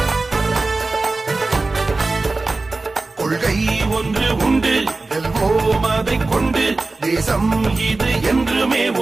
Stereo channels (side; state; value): left; quieter; 3.4 dB